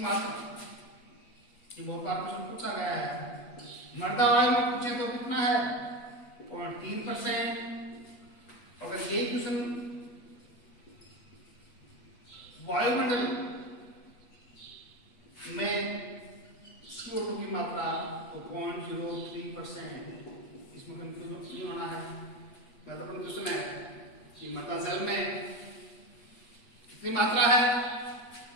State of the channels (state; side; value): late; right; 8.3 ms